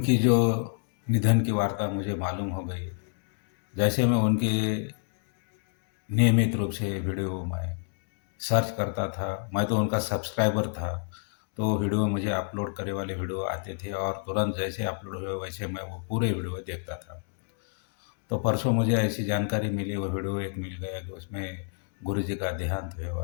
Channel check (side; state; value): right; silent; digital silence